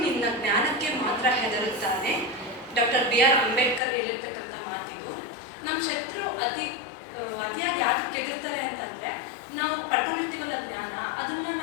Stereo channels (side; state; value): right; drops out; at 3.8 s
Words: ನಿನ್ನ ಜ್ಞಾನಕ್ಕೆ ಮಾತ್ರ ಹೆದರುತ್ತಾನೆ. ಡಾಕ್ಟರ್ BR ಅಂಬೇಡ್ಕರ್ ಹೇಳಿರ್ತಕ್ಕಂಥ ಮಾತಿದು. ನಮ್ಮ ಶತ್ರು ಅತಿಯಾಗಿ ಯಾಕೆ ಹೆದರ್ತಾರೆ ಅಂತಂದ್ರೆ, ನಾವು ಪಡ್ಕೊಂಡಿರ್ತೀವಲ್ಲ ಜ್ಞಾನ, ಅದನ್ನ